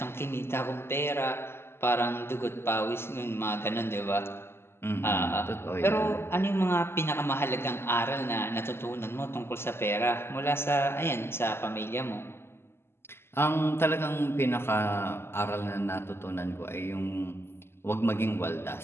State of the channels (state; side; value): late; right; 0.12 ms